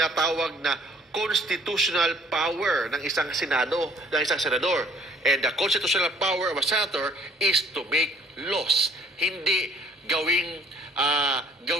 na constitutional power ng isang senado, ng isang senador. And the constitutional power of a senator is to make laws. Hindi gawing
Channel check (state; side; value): normal; both; correlation 0.58